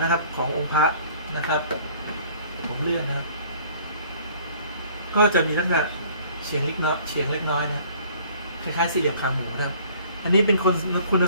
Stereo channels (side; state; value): both; inverted; correlation -0.54